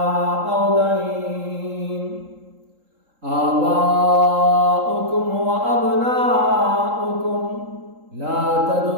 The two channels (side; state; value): left; late; 3.8 ms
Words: أو دين. آباؤكم وأبناؤكم لا